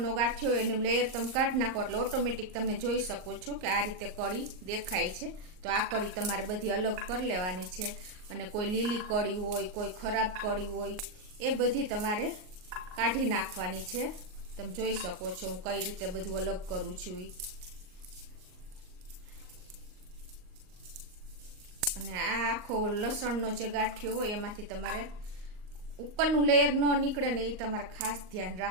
ગાંઠિયો એનું લેયર તમે કાઢી નાખો એટલે ઓટોમેટિક તમે જોઈ શકો છો કે આ રીતે કળી દેખાય છે। તો આ કળી તમારે બધી અલગ કરી લેવાની છે અને કોઈ લીલી કળી હોય, કોઈ ખરાબ કળી હોય એ બધી તમારે કાઢી નાખવાની છે। તમે જોઈ શકો છો હું કઈ રીતે બધું અલગ કરું છું। અને આ આખો લસણનો જે ગાંઠિયો હોય એમાંથી તમારે ઉપરનું લેયર ન નીકળે ને એ તમારે ખાસ ધ્યાન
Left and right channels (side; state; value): left; late; 38 ms